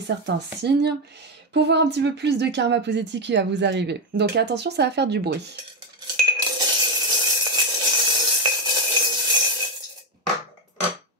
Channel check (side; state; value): both; normal; correlation 0.07